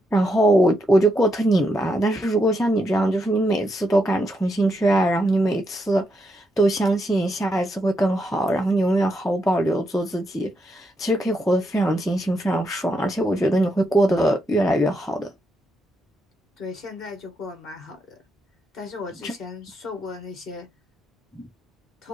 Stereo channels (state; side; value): normal; both; correlation 0.81